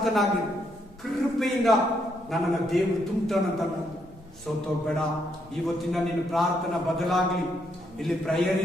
ಕೃಪೆಯಿಂದ ನನ್ನನ್ನು ದೇವರು ತುಂಬ್ತಾನಂತ ಸೋತೋಗ್ಬೇಡ. ಇವತ್ತಿನ ನಿನ್ನ ಪ್ರಾರ್ಥನಾ ಬದಲಾಗ್ಲಿ. ಇಲ್ಲಿ ಪ್ರೇಯರ್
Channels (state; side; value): normal; both; correlation 0.76